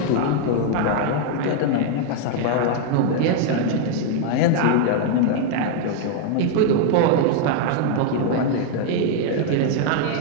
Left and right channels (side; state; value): both; different; correlation 0.00